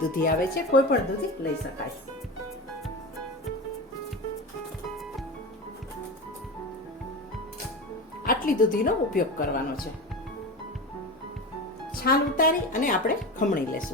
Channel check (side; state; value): both; normal; correlation 0.26